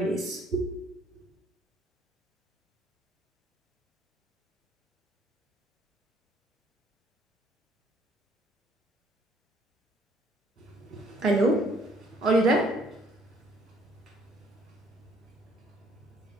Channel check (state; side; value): normal; both; correlation 0.62